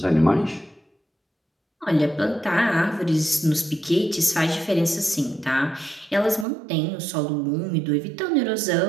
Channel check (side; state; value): left; drops out; at 6.5 s